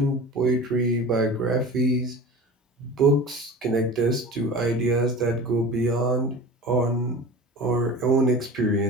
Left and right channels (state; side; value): normal; both; correlation 0.36